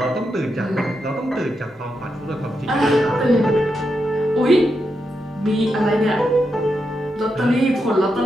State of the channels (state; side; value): normal; both; correlation 0.85